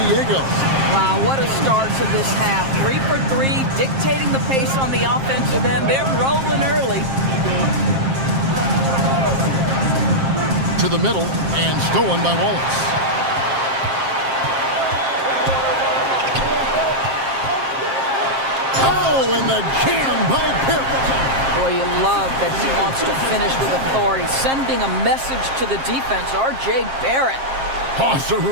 Diego. Wow, what a start to this half. 3 for 3, dictating the pace on the offensive end. They're rolling early. To the middle and stolen by Wallace. Oh, and the jam by Barrett. Boy, you love that he wants to finish with authority, sending a message to the defense. R.J. Barrett. Awesome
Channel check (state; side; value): late; left; 7.5 ms